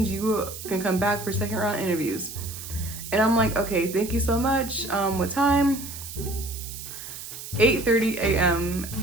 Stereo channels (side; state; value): right; noise; hiss, 11 dB below the sound